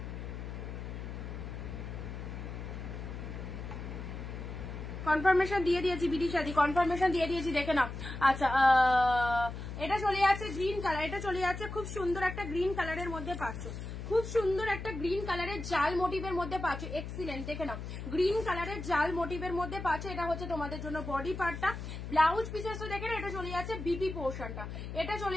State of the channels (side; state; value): left; noise; hum, 8 dB below the sound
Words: কনফার্মেশন দিয়ে দিয়েছি, বিদিশাদি কনফার্মেশন দিয়ে দিয়েছি, দেখে নাও। আচ্ছা এটা চলে যাচ্ছে গ্রিন কালার, এটা চলে যাচ্ছে খুব সুন্দর একটা গ্রিন কালারের মধ্যে পাচ্ছ, খুব সুন্দর একটা গ্রিন কালারের জাল মোটিভের মধ্যে পাচ্ছ, এক্সিলেন্ট, দেখে নাও গ্রিন কালারের জাল মোটিভের মধ্যে পাচ্ছ। এটা হচ্ছে তোমাদের জন্য বডি পার্টটা, ব্লাউজ পিসেসটা দেখে না, এটা চলে যাচ্ছে বিপি পোর্শনটা, এটা চলে